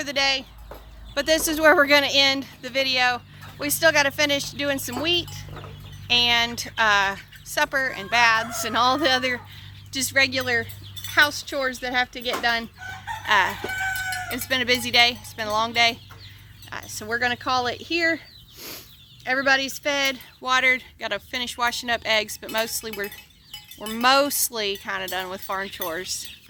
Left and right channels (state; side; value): identical; both; correlation 1.00